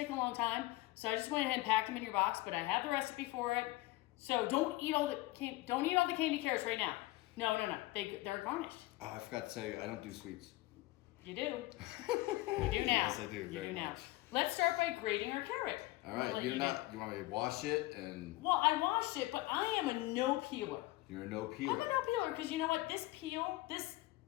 a long time, so I just went ahead and packed them in your box. But I have the recipe for it, so don't eat all the candy carrots right now. No. They're garnished. Oh, I forgot to tell you, I don't do sweets. You do. You do now. Yes, I do. You do now. Much. Let's start by grating our carrot. All right. You want me to wash it and? Well, I washed it, but I am a no peeler. You're a no peeler. I'm a no peeler because you know what? This peel, this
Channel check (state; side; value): quieter; right; 19.4 dB